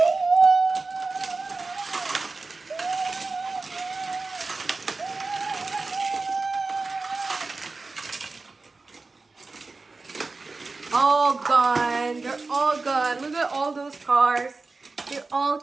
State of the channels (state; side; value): quieter; left; 3.8 dB